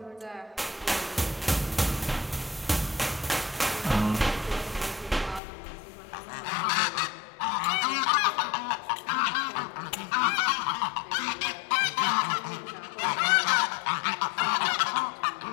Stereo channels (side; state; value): right; drops out; at 5.4 s